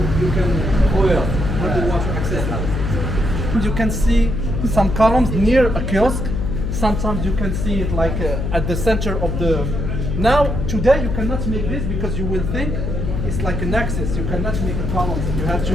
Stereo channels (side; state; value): left; noise; hum, 2 dB below the sound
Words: have the water accessible. You can see some columns near a kiosk. Sometimes you can see it like at the center of the. Now today you cannot make this because you will think it's like an axis. You cannot make a column. You have to